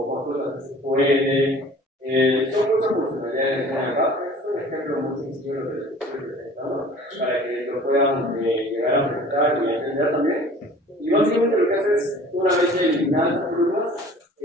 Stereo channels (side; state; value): both; normal; correlation 0.47